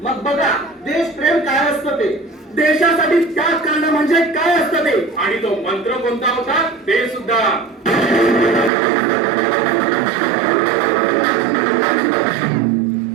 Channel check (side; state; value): left; drops out; at 8.7 s